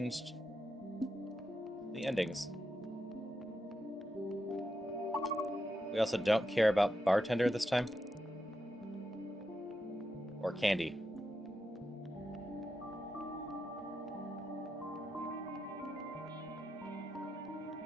the endings. We also don't care about bartender this time. Or candy.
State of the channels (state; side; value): normal; both; correlation 0.86